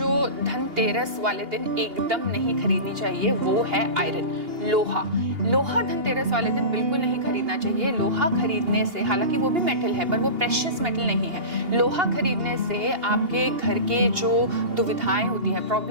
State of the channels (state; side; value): late; left; 2.8 ms